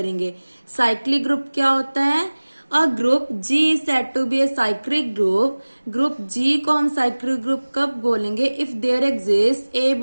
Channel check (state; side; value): inverted; both; correlation -1.00